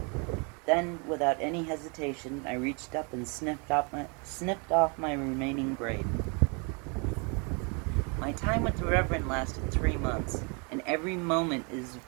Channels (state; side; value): quieter; left; 33.6 dB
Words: Then, without any hesitation, I reached up and snipped off my remaining braid. My time with the Reverend lasted 3 months, and every moment is...